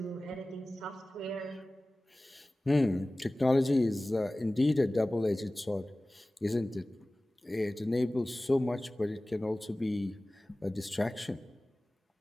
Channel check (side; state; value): both; normal; correlation 0.98